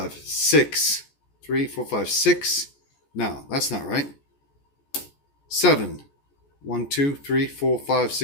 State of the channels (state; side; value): late; right; 14 ms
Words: 6, 3, 4, 5, 6. No, that's not right. 7, 1, 2, 3, 4, 5,